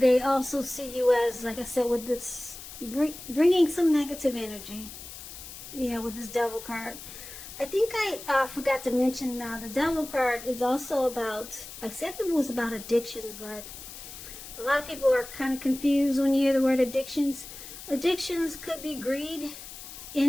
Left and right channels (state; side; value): noise; left; hiss, 13 dB below the sound